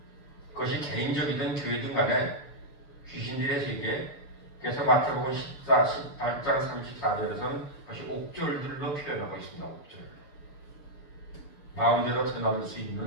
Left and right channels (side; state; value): right; late; 6.9 ms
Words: 그것이 개인적이든 교회든 간에 귀신들의 세계, 그래서 마태복음 18장 34절에서는 그것이 옥졸들로 표현하고 있습니다. 옥졸. 마음대로 드나들 수